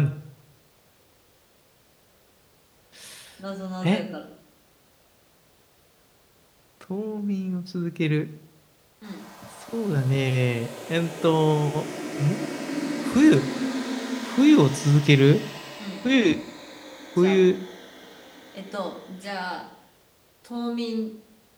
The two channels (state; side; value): identical; both; correlation 1.00